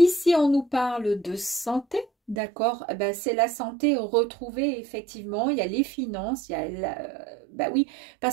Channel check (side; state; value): left; drops out; at 2.4 s